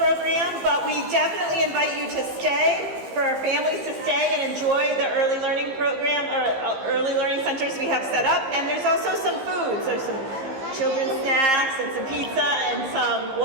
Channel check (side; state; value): left; late; 15 ms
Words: but we definitely invite you to stay, for our families to stay and enjoy the early learning program, or early learning centers we have set up. And there's also some foods. There's some children's snacks and some pizza and some